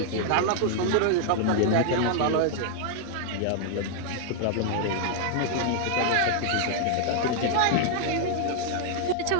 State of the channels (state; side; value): different; both; correlation 0.00